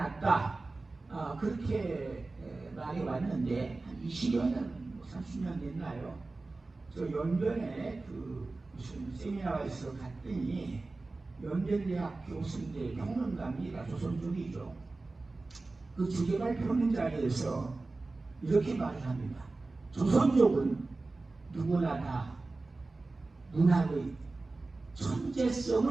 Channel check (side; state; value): left; quieter; 3.4 dB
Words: 그렇게 말해왔는데 한 20여 년, 30년 됐나요? 저 연변에 무슨 세미나가 있어 갔더니 연변대학 교수인데 평론가입니다. 조선족이죠. 그 주제발 펴는 자리에서 이렇게 말을 합니다. 조선족은 누구나 다 문학의